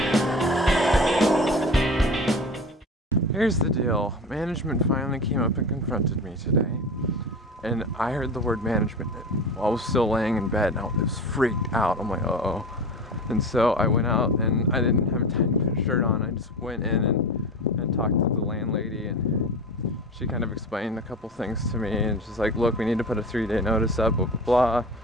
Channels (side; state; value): both; normal; correlation 0.31